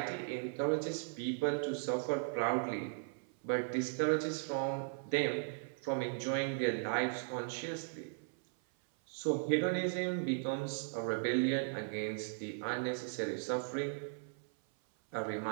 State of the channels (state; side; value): silent; left; 53 dB below the other